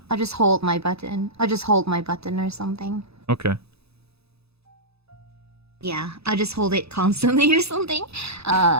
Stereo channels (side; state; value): left; late; 0.79 ms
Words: I'll just hold my button. I'll just hold my button or something. Okay. Yeah, I'll just hold it constantly or something.